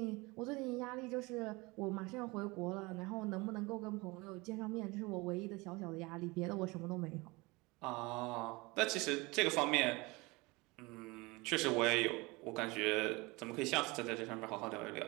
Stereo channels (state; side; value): quieter; left; 24.4 dB